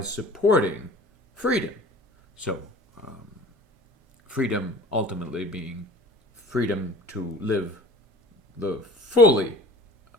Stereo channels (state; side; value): normal; both; correlation 0.44